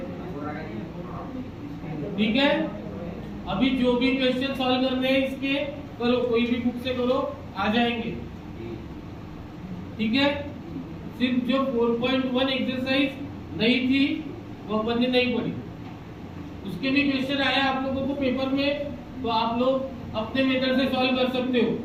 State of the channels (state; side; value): identical; both; correlation 1.00